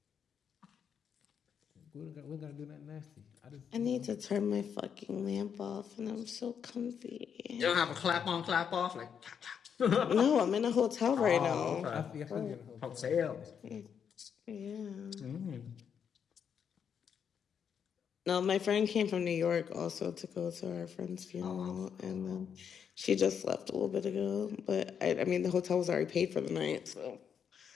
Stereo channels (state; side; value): quieter; right; 7.5 dB